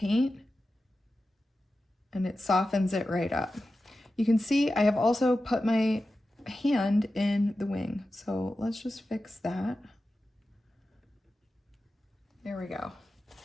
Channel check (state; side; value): normal; both; correlation 0.93